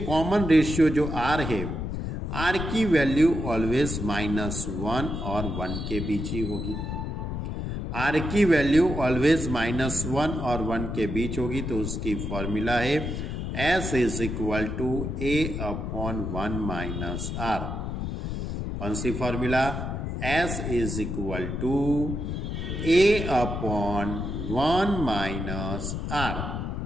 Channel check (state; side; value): noise; left; rumble, 4 dB below the sound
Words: रेशियो जो R है, R की वैल्यू ऑलवेज -1 और 1 के बीच ही होगी। R की वैल्यू ऑलवेज -1 और 1 के बीच होगी, तो उसकी फॉर्मूला है S is equal to A upon 1 minus R। कौन सी formula? S is equal to A upon 1 minus R।